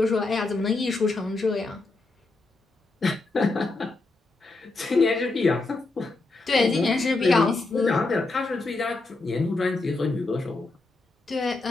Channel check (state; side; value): quieter; right; 3.3 dB